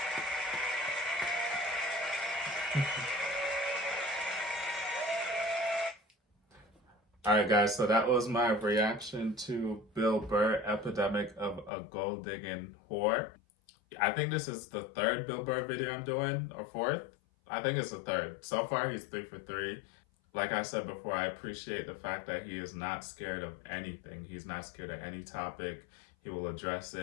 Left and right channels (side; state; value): right; drops out; at 11.7 s